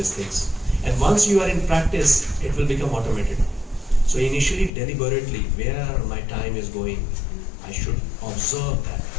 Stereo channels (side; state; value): right; drops out; at 4.7 s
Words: things. And once you are in practice, it will become automated. So initially, deliberately, where my time is going, I should observe that.